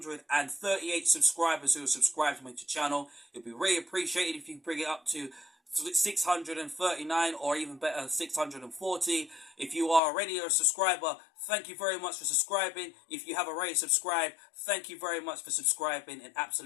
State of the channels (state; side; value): drops out; right; at 10.0 s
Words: subscribers who have subscribed to my channel. It'd be really appreciated if you bring it up to 639 or even better 640. If you are already a subscriber, thank you very much for subscribing. If you have already subscribed, thank you very much for subscribing. It